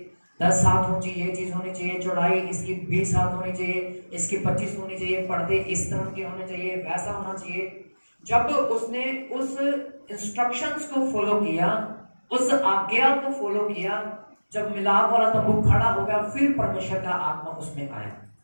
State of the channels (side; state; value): both; inverted; correlation -1.00